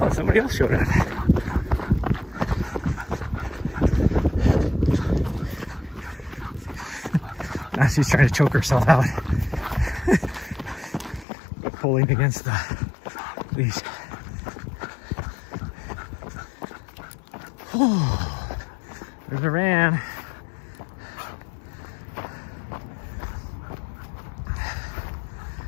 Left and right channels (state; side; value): drops out; right; at 11.2 s